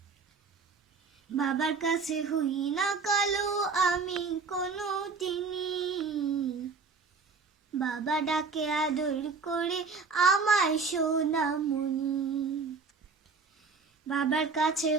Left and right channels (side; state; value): left; quieter; 4.8 dB